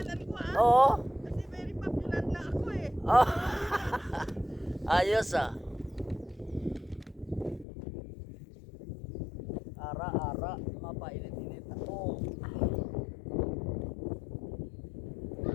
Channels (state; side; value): drops out; right; at 7.7 s